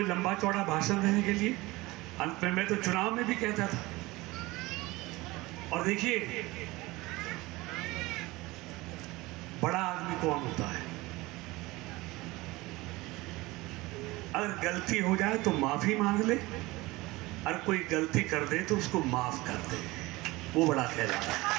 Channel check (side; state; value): left; quieter; 20.9 dB